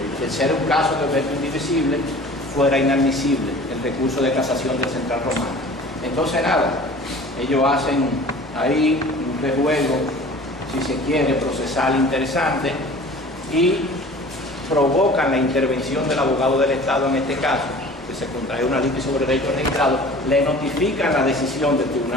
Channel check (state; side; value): normal; both; correlation 0.44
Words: ser un caso de objeto indivisible, fuera inadmisible el recurso de casación del Central Romano. Entonces nada, ellos hacen ahí un rejuego, si se quiere, procesal interesante, y provocan la intervención del abogado del Estado en este caso, que se contrae una litis sobre derechos registrados, le notifican la decisión del